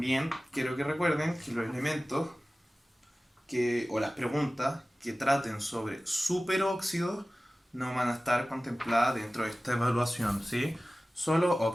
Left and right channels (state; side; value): normal; both; correlation 0.97